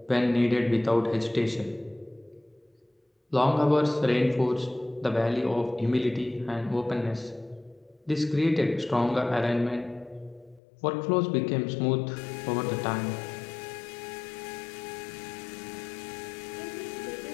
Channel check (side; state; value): right; drops out; at 10.6 s